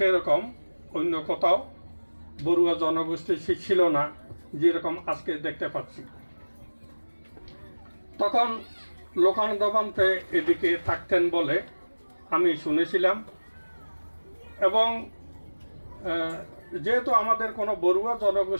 অন্য কোথাও বড়ুয়া জনগোষ্ঠী ছিল না যেরকম আজকে দেখতে পাচ্ছি। তখন লোকানন্দ ভান্তে এদিকে থাকতেন বলে আমি শুনেছিলাম, এবং যেহেতু আমাদের কোনো বড়ুয়া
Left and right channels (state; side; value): inverted; both; correlation -1.00